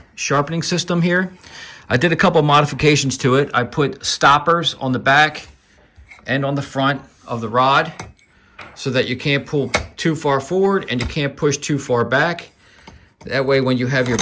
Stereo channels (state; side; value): identical; both; correlation 1.00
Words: sharpening system here. I did a couple modifications to it. I put stoppers on the back and on the front of the rod so that you can't pull too far forward and you can't push too far back. That way when you have your